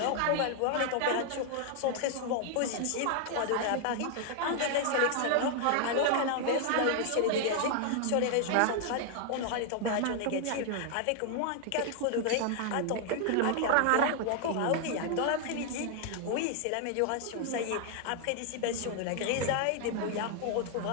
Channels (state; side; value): different; both; correlation 0.00